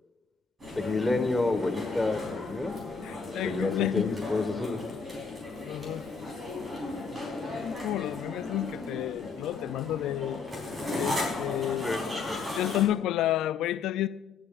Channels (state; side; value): quieter; right; 5.4 dB